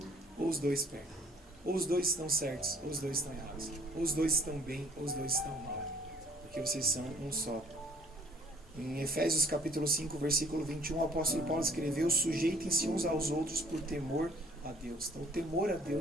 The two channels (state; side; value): normal; both; correlation 0.57